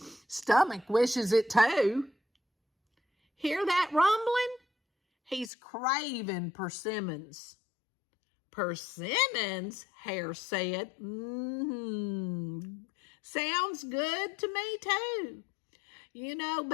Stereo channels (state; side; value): drops out; right; at 5.5 s